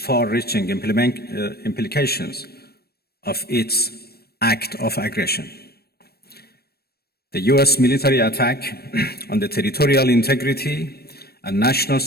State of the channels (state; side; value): late; right; 0.46 ms